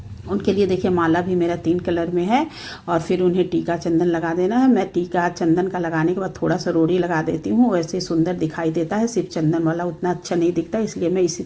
उनके लिए देखिए माला भी मेरा 3 कलर में है। और फिर उन्हें टीका चंदन लगा देना है। मैं टीका चंदन का लगाने के बाद थोड़ा सा रोड़ी लगा देती हूँ, वैसे सुंदर दिखाई देता है, सिर्फ चंदन वाला उतना अच्छा नहीं दिखता, इसलिए मैं इसी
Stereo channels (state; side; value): identical; both; correlation 1.00